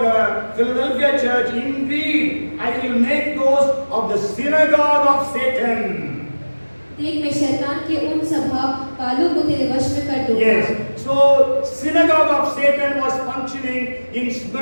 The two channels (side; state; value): both; inverted; correlation -1.00